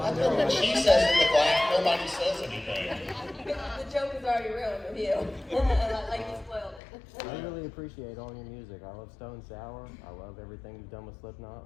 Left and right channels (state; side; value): drops out; right; at 6.8 s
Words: gentlemen. know when she says in the black, nobody says anything. The joke is already ruined with you. Like you spoiled it. I really appreciate all your music. I love Stone Sour. I love everything you've done with Slipknot,